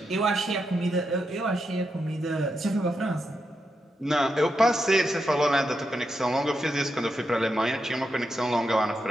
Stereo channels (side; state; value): both; normal; correlation 0.85